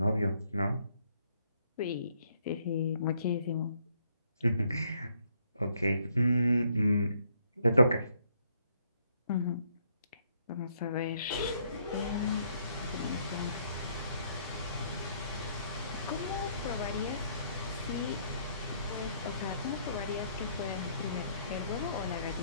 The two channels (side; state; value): both; inverted; correlation -0.69